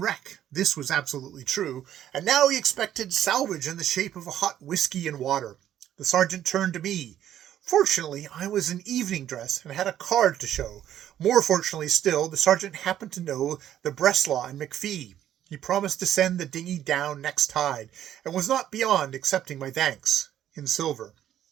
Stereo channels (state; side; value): quieter; left; 11.2 dB